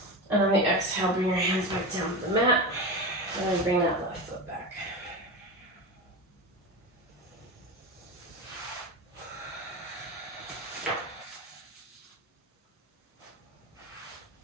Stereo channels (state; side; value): normal; both; correlation 0.23